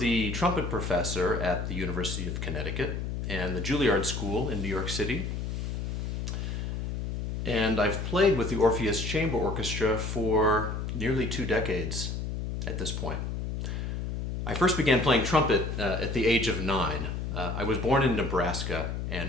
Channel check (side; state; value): left; noise; hum, 3 dB below the sound